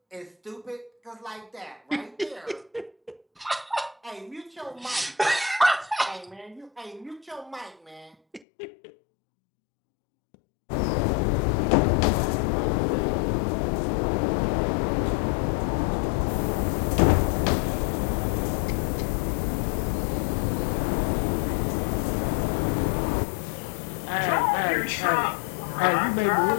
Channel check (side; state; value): right; drops out; at 8.4 s